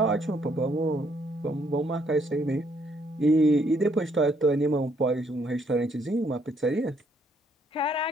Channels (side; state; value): both; normal; correlation 0.69